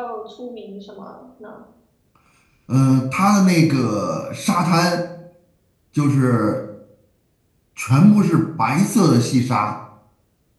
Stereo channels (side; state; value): both; identical; correlation 1.00